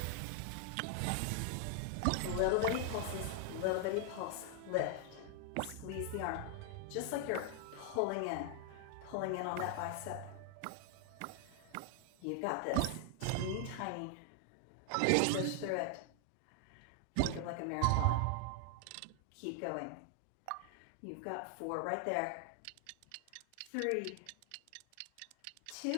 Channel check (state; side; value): different; both; correlation 0.00